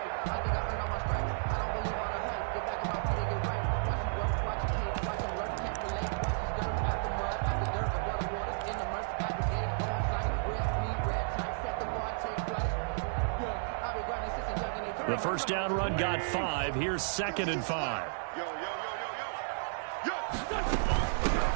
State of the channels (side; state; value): left; silent; digital silence